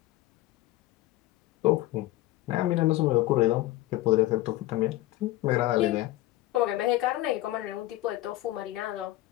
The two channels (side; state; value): right; quieter; 16.8 dB